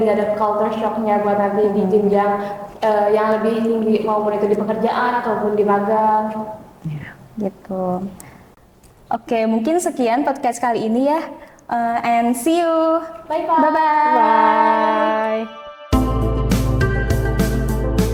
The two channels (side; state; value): both; identical; correlation 1.00